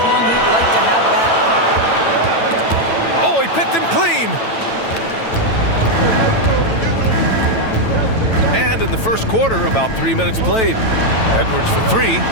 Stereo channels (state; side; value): late; right; 9.0 ms